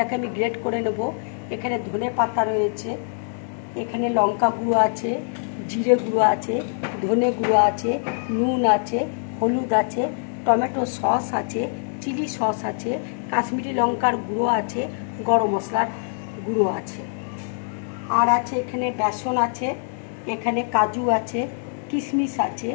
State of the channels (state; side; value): silent; right; digital silence